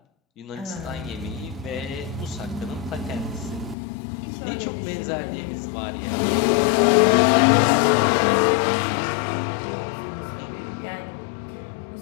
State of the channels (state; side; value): drops out; right; at 3.8 s